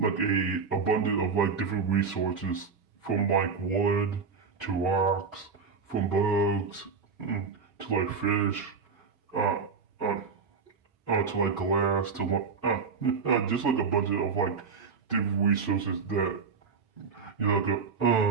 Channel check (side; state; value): left; quieter; 5.3 dB